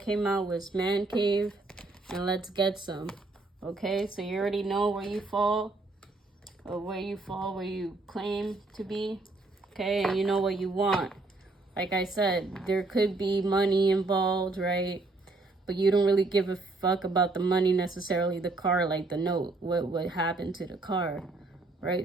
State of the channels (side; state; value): left; quieter; 3.3 dB